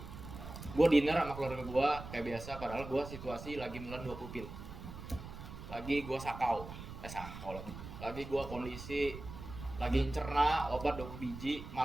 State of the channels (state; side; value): noise; right; rumble, 11 dB below the sound